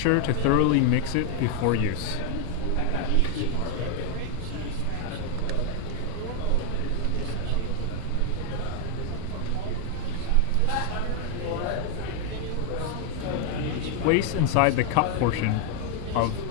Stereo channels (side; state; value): both; different; correlation 0.00